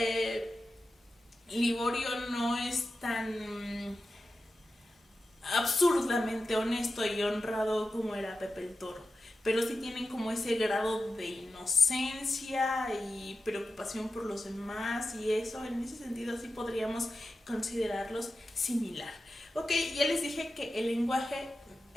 Liborio no es tan absurdamente honesto y honrado como era Pepe el Toro, pero sí tienen como ese grado de inocencia y preocupación por los demás, y eso, en ese sentido sí podríamos considerarlos similar. Ok, ya les dije que el lenguaje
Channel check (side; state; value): both; normal; correlation 0.92